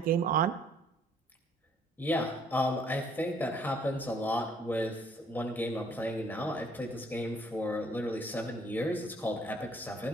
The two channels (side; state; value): both; normal; correlation 0.62